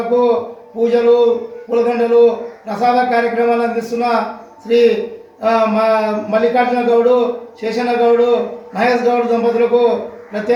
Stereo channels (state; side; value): identical; both; correlation 1.00